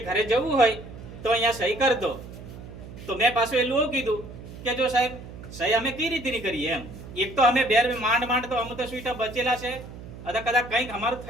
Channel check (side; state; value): right; noise; hum, 14 dB below the sound